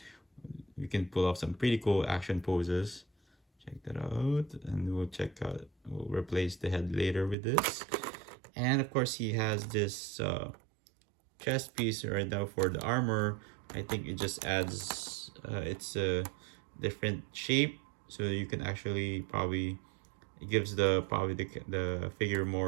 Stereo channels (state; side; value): drops out; left; at 7.4 s